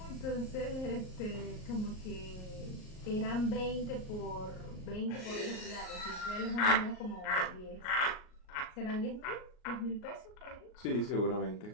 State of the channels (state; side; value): late; right; 38 ms